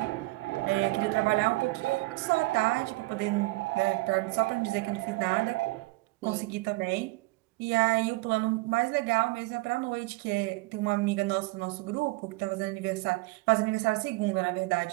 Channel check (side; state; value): left; quieter; 21.8 dB